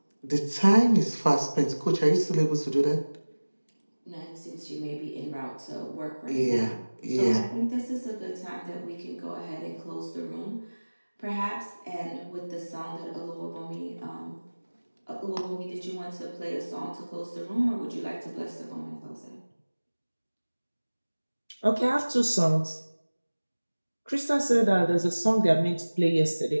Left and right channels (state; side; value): inverted; both; correlation -1.00